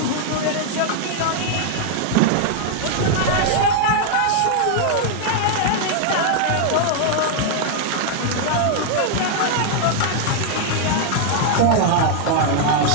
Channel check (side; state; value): both; different; correlation 0.00